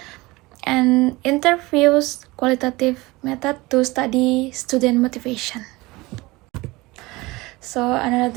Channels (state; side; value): quieter; left; 21.7 dB